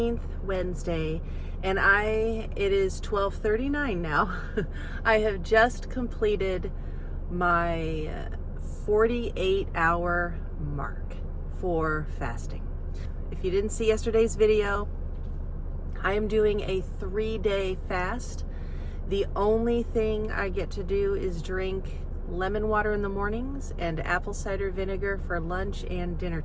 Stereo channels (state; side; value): identical; both; correlation 1.00